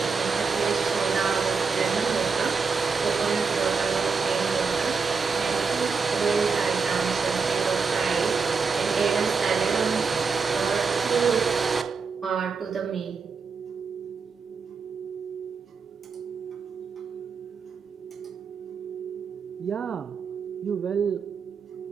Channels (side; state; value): left; quieter; 5.2 dB